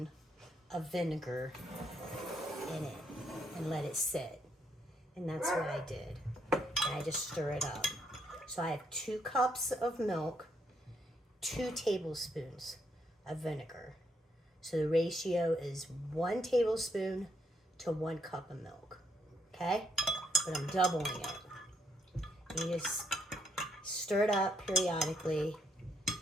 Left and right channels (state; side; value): normal; both; correlation 0.74